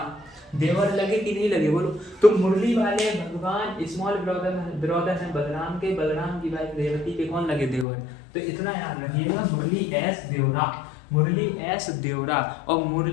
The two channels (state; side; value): drops out; right; at 7.9 s